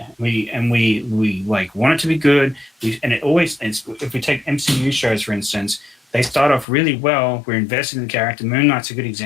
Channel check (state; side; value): drops out; right; at 6.7 s